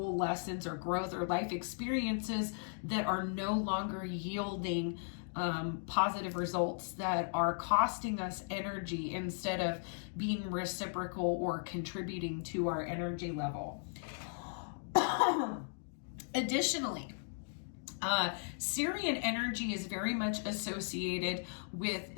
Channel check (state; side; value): silent; right; digital silence